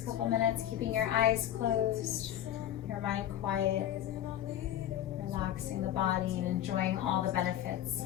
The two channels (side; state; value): right; quieter; 11.5 dB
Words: couple minutes, keeping your eyes closed, your mind quiet, relaxing the body and enjoying all the benefits